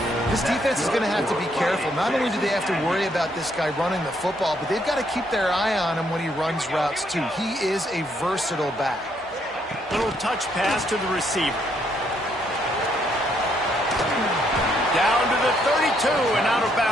This defense is going to have to be careful. Not only do they have to worry about this guy running the football, but they've got to keep their eye on him when he runs routes, too. He is a versatile back. Little touch pass to the receiver. Down to the 32 and out of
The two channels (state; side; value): normal; both; correlation 0.72